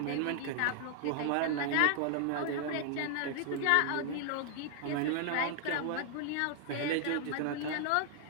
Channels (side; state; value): both; different; correlation 0.00